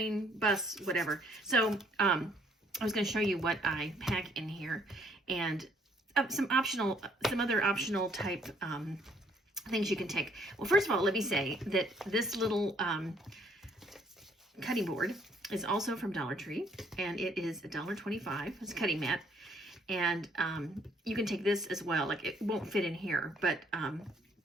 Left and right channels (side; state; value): both; normal; correlation 0.65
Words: bus, whatever. So I was going to show you what I pack in here, and some other optional type things you can take. Well, first of all, let me say that this little cutting board is also from Dollar Tree, and it is $1.25. It's a cutting mat, and you can take this as well. Like, it won't fit in here, but